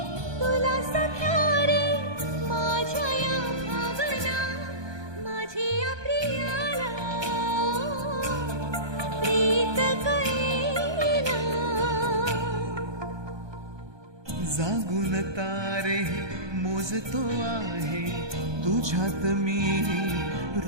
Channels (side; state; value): left; late; 1.2 ms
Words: तुला सख्या रे माझ्या या भावना माझी या प्रियाला प्रीत कळेना जागून तारे मोजतो आहे तुझ्यात मी